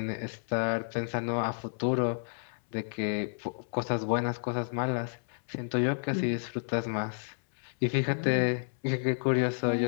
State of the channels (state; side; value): silent; right; 57 dB below the other